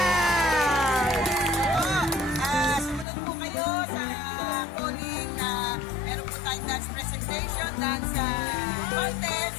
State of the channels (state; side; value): drops out; right; at 3.1 s